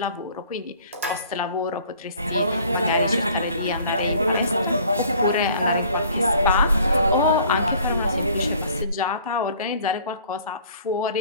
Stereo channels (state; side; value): inverted; both; correlation -0.54